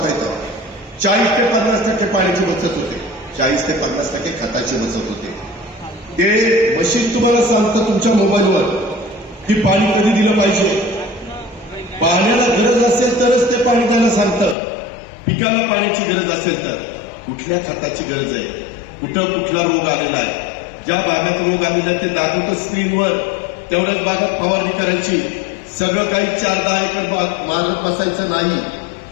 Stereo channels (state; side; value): drops out; right; at 14.6 s